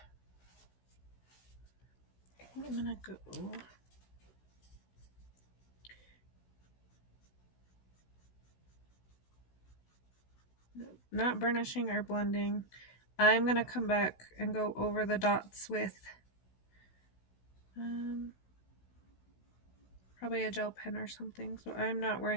I'm gonna go not burnishing or blending. I'm gonna come back and go over the dots with probably a gel pen or something, so I'm not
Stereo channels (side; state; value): right; late; 16 ms